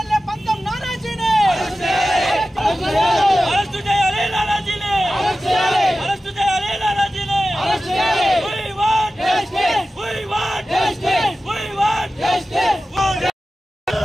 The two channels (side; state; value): both; normal; correlation 0.94